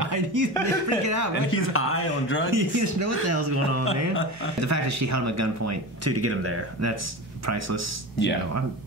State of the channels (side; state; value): both; normal; correlation 0.28